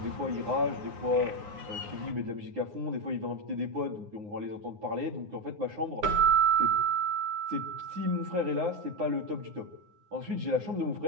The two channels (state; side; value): late; left; 9.6 ms